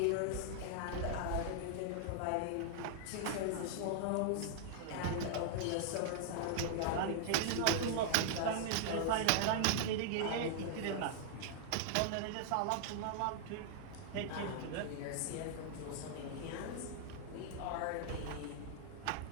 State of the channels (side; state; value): both; different; correlation -0.01